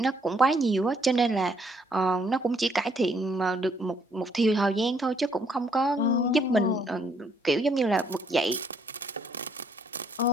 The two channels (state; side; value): normal; both; correlation 0.68